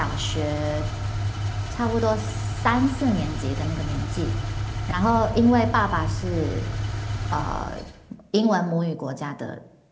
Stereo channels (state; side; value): identical; both; correlation 1.00